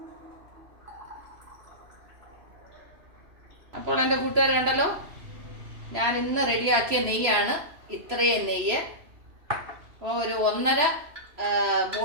അപ്പോൾ എൻ്റെ കൂട്ടുകാർ കണ്ടല്ലോ, ഞാൻ ഇന്ന് റെഡിയാക്കിയ നെയ്യാണ് ഇത്രയും നെയ്യ്. അപ്പോൾ ഒരു 1.5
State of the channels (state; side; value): late; left; 3.0 ms